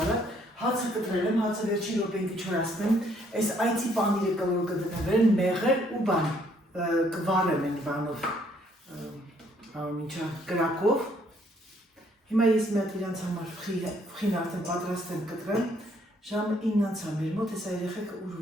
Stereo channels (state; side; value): normal; both; correlation 0.66